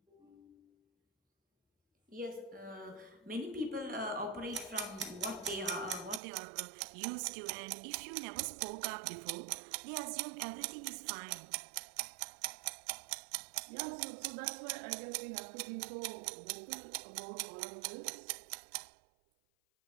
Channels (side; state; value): left; drops out; at 6.2 s